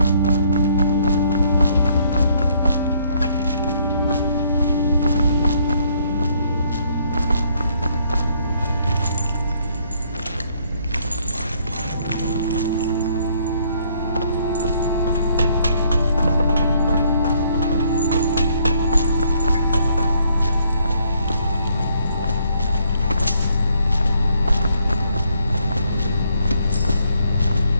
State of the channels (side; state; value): both; inverted; correlation -0.68